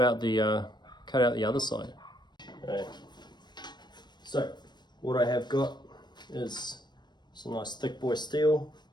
out the other side. Okay. So what I have got is some nice thick boy steel.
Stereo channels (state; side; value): late; right; 0.21 ms